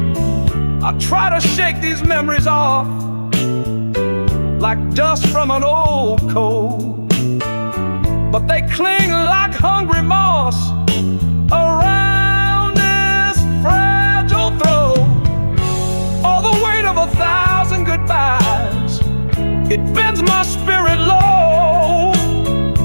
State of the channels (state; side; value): inverted; both; correlation -1.00